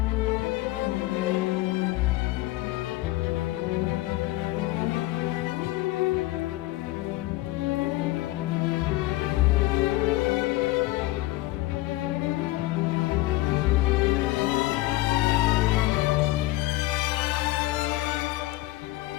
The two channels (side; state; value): right; quieter; 18.4 dB